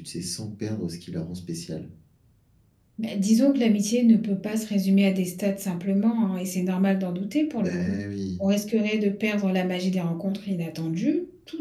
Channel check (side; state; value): both; identical; correlation 1.00